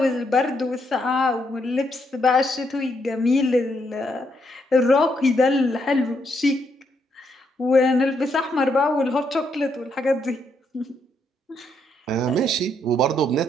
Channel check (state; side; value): normal; both; correlation 0.76